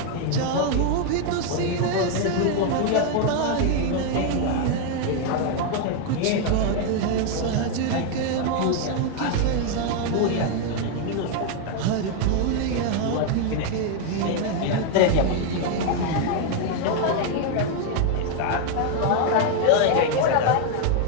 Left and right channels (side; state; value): both; different; correlation 0.01